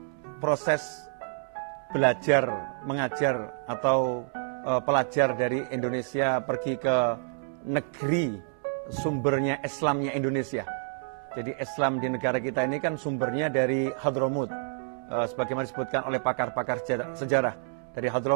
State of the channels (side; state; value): left; silent; 59 dB below the other